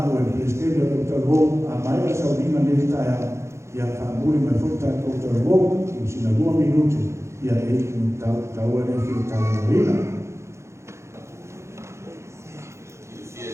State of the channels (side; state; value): left; late; 0.13 ms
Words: au e prestene o ta rōu a mai a sauninga ni tai au. Ia whaamuri mai futa koutou wou, i sina 2 minuti, ia e tau ane ki o tau marina. I fie